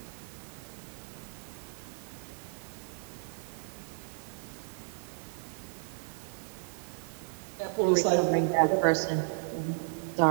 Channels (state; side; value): silent; left; digital silence